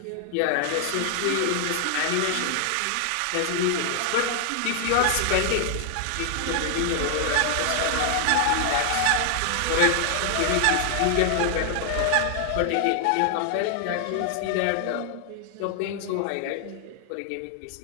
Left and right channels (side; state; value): both; different; correlation 0.00